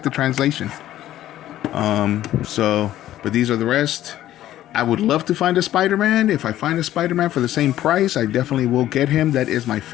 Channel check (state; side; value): quieter; right; 13.3 dB